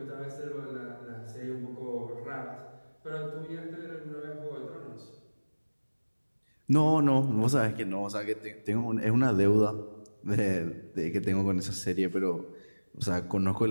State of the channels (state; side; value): inverted; both; correlation -1.00